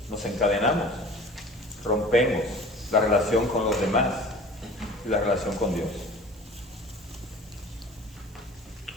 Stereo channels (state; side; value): noise; right; hiss, 28 dB below the sound